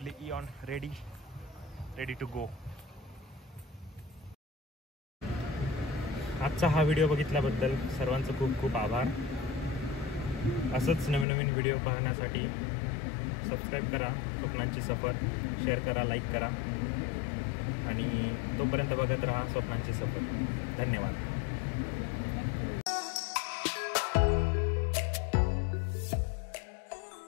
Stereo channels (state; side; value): drops out; right; at 11.2 s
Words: इऑन रेडी टू गो. आजचा हा व्हिडिओ बघितल्याबद्दल सर्वांचं खूप खूप आभार. असंच नवीन व्हिडिओ पाहण्यासाठी सबस्क्राईब करा स्वप्नांची सफर, शेअर करा, लाईक करा आणि तोपर्यंत बघत राहा स्वप्नांची सफर. धन्यवाद.